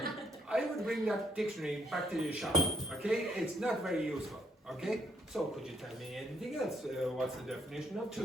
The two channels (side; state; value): both; normal; correlation 0.71